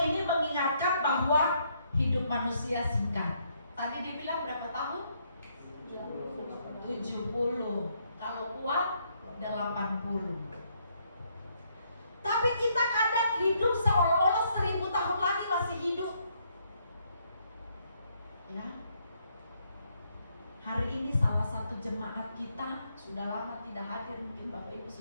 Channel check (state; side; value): inverted; both; correlation -0.72